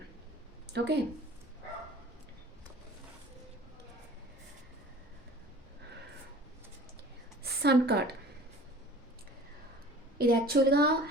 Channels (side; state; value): both; normal; correlation 0.44